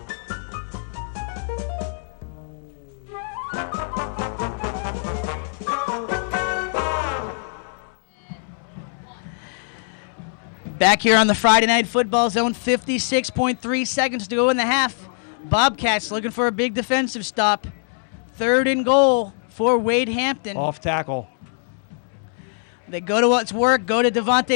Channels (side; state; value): right; silent; 63 dB below the other